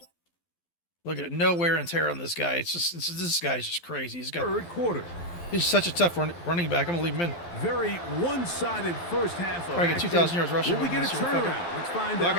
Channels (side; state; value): right; late; 12 ms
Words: Look at it, no wear and tear on this guy. This guy's just crazy. third quarter. He's such a tough running back. I'm going to leave him in. Very one-sided first half of Probably get action. 2,000 yards rushing. Will we get a this year. Fuck it. turnaround? Let's find Fuck